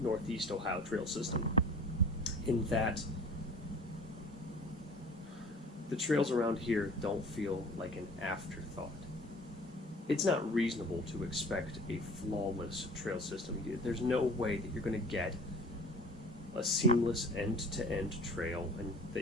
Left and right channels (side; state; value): both; normal; correlation 0.45